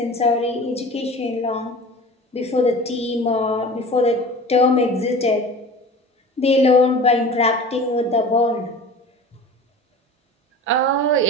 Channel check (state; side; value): normal; both; correlation 0.38